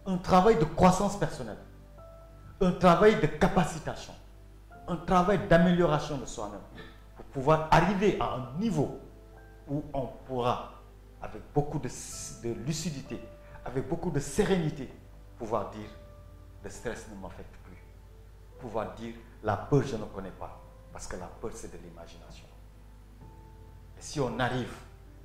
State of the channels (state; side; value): identical; both; correlation 1.00